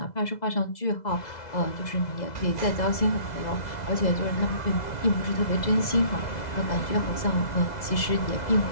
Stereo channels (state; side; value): late; right; 2.0 ms